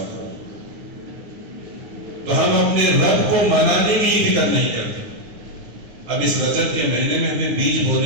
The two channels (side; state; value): left; late; 9.6 ms